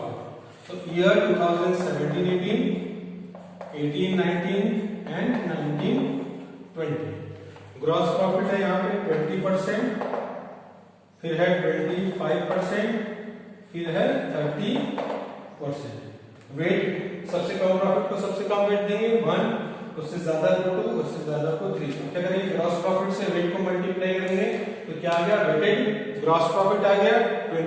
So year 2017-18, 18-19 and 19-20 gross profit है यहाँ पे 20%, फिर है 25%, फिर है 30%। वेट सबसे कम प्रॉफिट को सबसे कम वेट देंगे 1, उससे ज्यादा को 2, उससे ज्यादा को 3। क्या करेंगे ग्रॉस प्रॉफिट से वेट को मल्टीप्लाई करेंगे, तो क्या आ गया वेटेड ग्रॉस प्रॉफिट आ गया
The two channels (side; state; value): both; identical; correlation 1.00